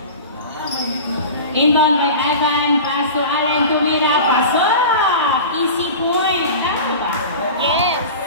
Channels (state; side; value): inverted; both; correlation -0.33